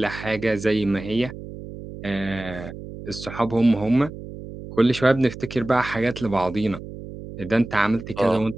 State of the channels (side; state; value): right; noise; hum, 12 dB below the sound